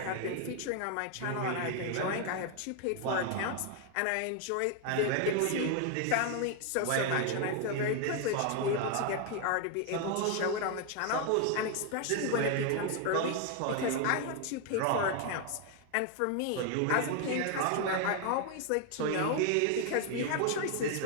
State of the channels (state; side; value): different; both; correlation 0.01